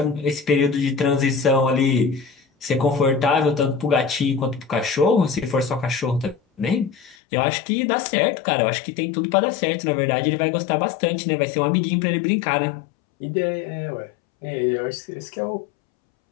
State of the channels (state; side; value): drops out; right; at 7.2 s